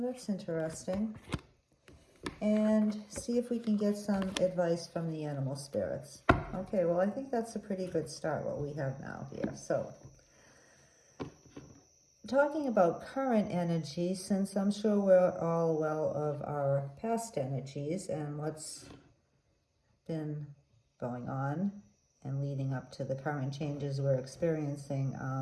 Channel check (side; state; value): both; identical; correlation 1.00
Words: interesting. And see if we can get some advice from the animal spirits. Okay, well, I think that's a pretty good start, what we have now here. So, talking about current energy, since I'm sure we're all well of our past energies and what's been going on and leading up to the current changes we're experiencing,